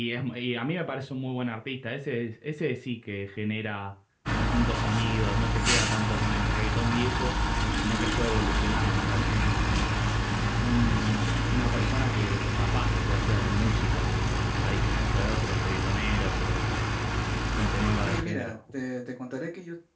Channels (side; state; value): both; identical; correlation 1.00